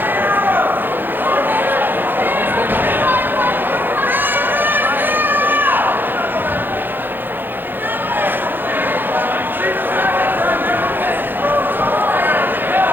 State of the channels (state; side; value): late; left; 0.094 ms